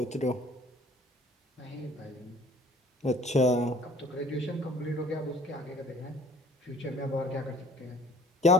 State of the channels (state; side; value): normal; both; correlation 0.52